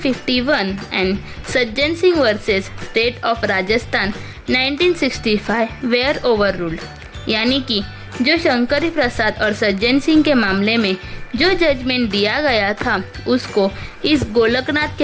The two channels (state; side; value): identical; both; correlation 1.00